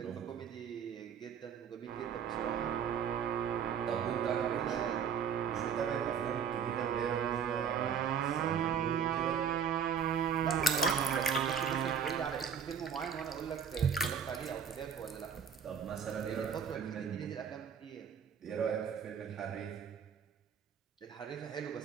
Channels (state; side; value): quieter; left; 7.3 dB